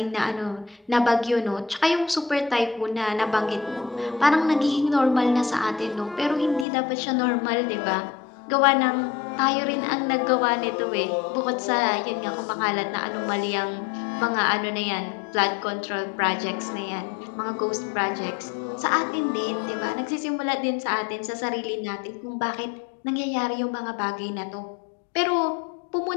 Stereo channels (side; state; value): right; drops out; at 6.7 s